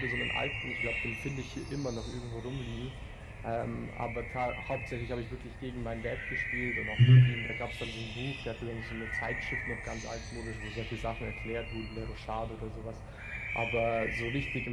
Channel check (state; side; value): identical; both; correlation 1.00